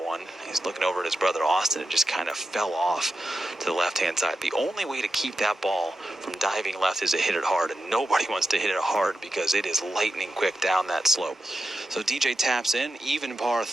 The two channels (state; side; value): normal; both; correlation 0.89